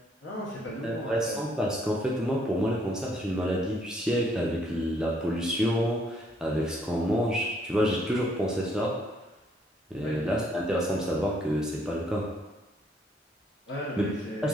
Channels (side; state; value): both; normal; correlation 0.67